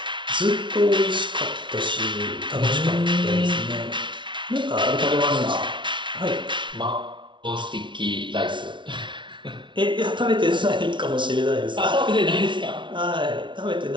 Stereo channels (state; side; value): late; left; 0.24 ms